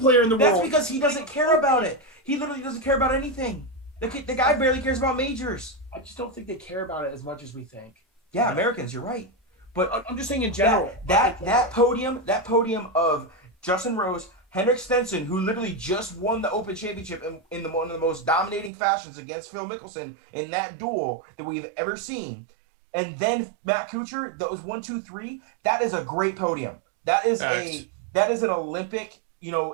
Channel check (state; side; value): drops out; left; at 18.7 s